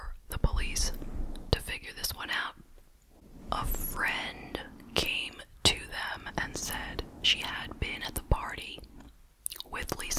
the police to figure this one out. A friend came to them and said she had been at the party with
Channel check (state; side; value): identical; both; correlation 1.00